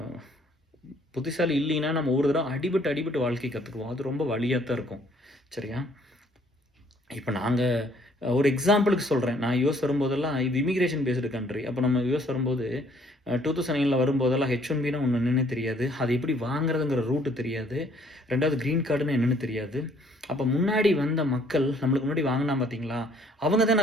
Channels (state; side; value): normal; both; correlation 0.63